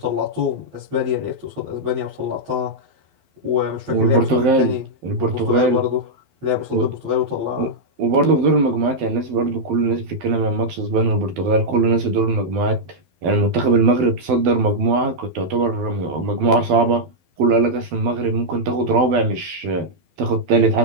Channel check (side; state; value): left; late; 12 ms